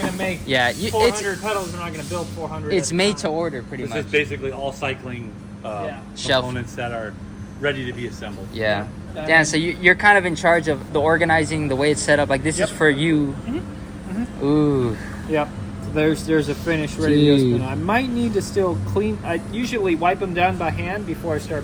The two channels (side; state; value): both; identical; correlation 1.00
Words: make Yeah, 400 pedals. We're not gonna build 400. it's at a made to time. order pretty This much. is basically all cycling Shelf. components that are ready to be assembled. Yeah. Dan, so you're kind of in charge of the organizing, the way it's set up. Like this is for you. Ooh. Yep. So there's a finish ready to go Dude. spin. I might need to still clean. I usually wipe them down by hand before I start